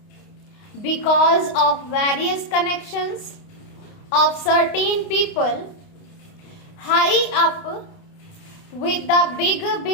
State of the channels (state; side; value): late; right; 29 ms